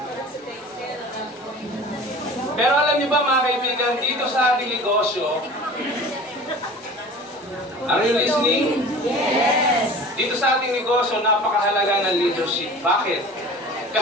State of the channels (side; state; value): both; normal; correlation 0.41